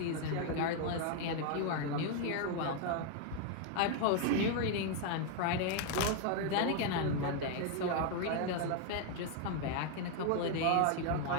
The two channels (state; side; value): different; both; correlation 0.00